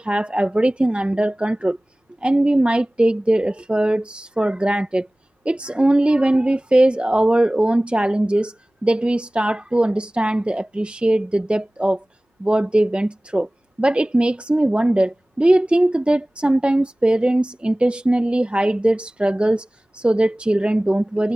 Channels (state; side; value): normal; both; correlation 0.98